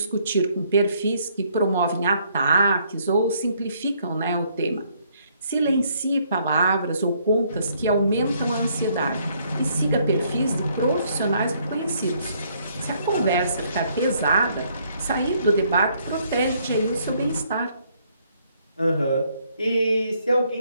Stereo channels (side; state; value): both; inverted; correlation -0.68